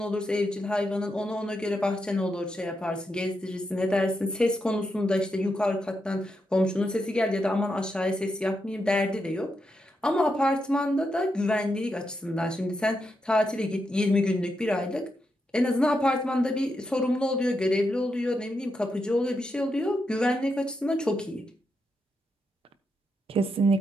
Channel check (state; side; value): normal; both; correlation 0.84